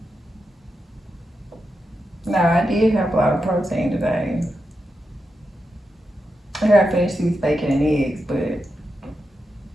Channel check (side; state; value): both; normal; correlation 0.87